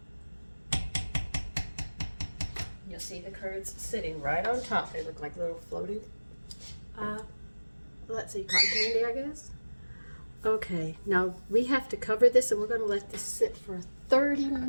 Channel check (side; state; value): both; inverted; correlation -1.00